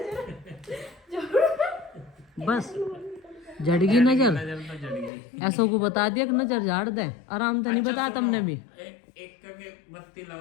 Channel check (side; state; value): right; drops out; at 5.1 s